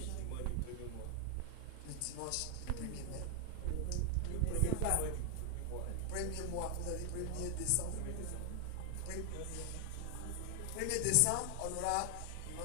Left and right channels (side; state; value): both; different; correlation 0.00